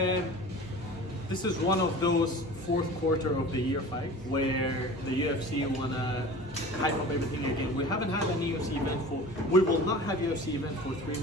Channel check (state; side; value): normal; both; correlation 0.39